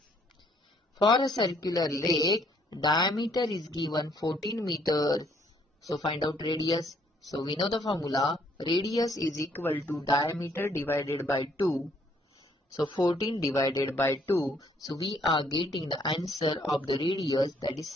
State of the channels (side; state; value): both; normal; correlation 0.66